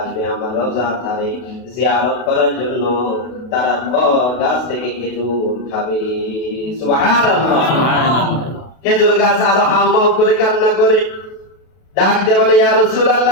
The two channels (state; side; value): late; right; 32 ms